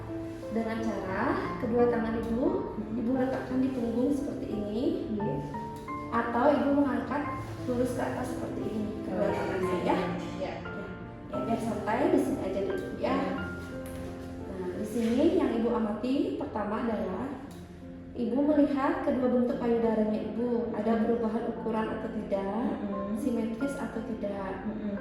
dengan cara kedua tangan Ibu letakkan di punggung seperti ini, atau Ibu mengangkat lurus ke atas seperti ini kedua tangannya ya. Ya biar santai di sini aja dulu ya. Nah di sini yang Ibu amati pertama adalah Ibu melihat kedua bentuk payudaranya Ibu, ada perubahan ukuran atau tidak, simetris atau tidak,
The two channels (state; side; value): identical; both; correlation 1.00